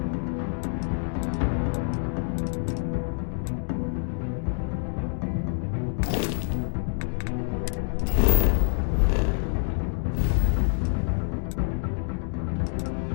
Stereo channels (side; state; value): right; silent; 60 dB below the other